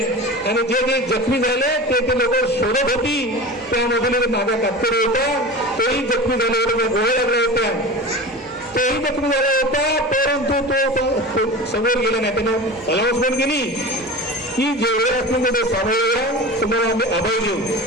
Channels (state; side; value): normal; both; correlation 0.32